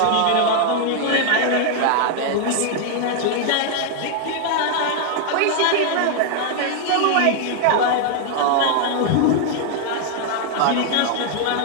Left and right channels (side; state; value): both; different; correlation 0.00